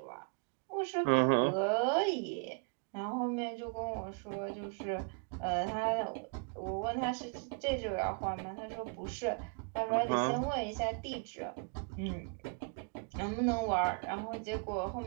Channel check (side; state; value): left; quieter; 38.7 dB